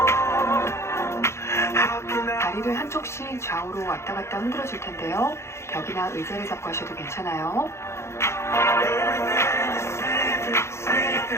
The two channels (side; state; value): right; late; 0.13 ms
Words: 다리를 한쪽씩 좌우로 왔다 갔다 흔들어 줄 텐데요. 벽이나 의자를 잡고 하셔도 괜찮아요.